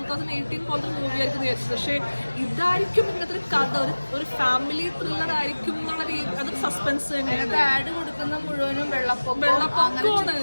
പോലത്തെ മൂവി ആയിരിക്കും വിചാരിച്ചത്. പക്ഷേ ഇതായിരിക്കും ഇങ്ങനത്തെ ഒരു കഥ, ഒരു ഫാമിലി ത്രില്ലർ ആയിരിക്കും എന്നുള്ള രീതി. അതൊരു സസ്പെൻസ് തന്നെയാണ്. ആഡ് കൊടുക്കുന്ന മുഴുവനും വെള്ളപ്പൊക്കമാണ്.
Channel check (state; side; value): inverted; both; correlation -1.00